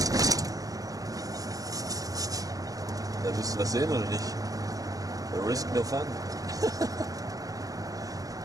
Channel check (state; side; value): late; left; 0.17 ms